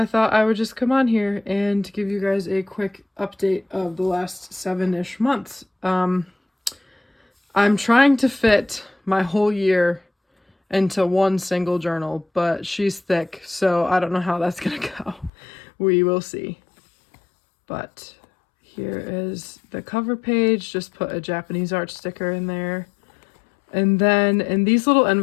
thought I would just come on here and give you guys a quick update of the last 7-ish months. I'm trying to fit my whole year into one single journal, but she's thick, so I don't know how that's gonna go. We will see. But here is the cover page. Just put a Japanese art sticker in there. And then in these little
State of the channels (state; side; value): drops out; right; at 15.3 s